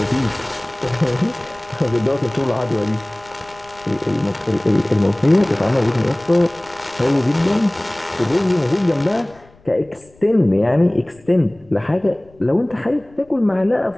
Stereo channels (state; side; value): noise; left; rumble, 28 dB below the sound